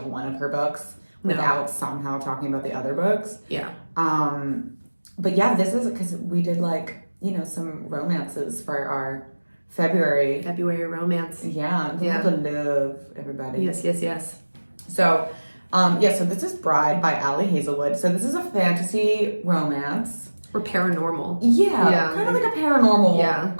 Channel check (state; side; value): inverted; both; correlation -1.00